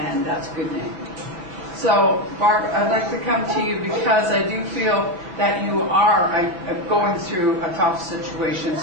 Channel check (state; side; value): late; left; 5.8 ms